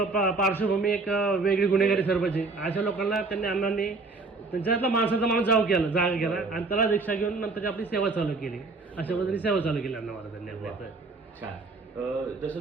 पार्श्वभूमी एक वेगळी गुन्हेगारी सरपंच अशा लोकांना त्यांनी अण्णांनी त्यांच्यातला माणसाचा माणूस जागा केला आणि त्याला दीक्षा घेऊन नंतर आपली सेवा चालू केली. अशा पद्धतीने सेवा चालू केली अण्णा महाराजांनी आपल्या. छान. जसं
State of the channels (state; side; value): quieter; left; 3.7 dB